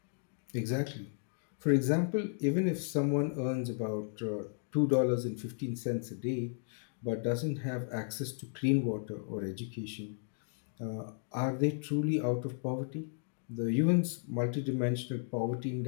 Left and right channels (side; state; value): right; silent; digital silence